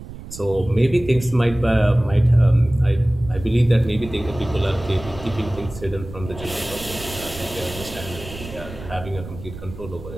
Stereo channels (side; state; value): right; noise; rumble, 13 dB below the sound